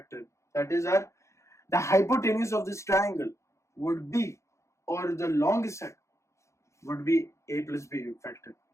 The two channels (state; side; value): late; right; 0.14 ms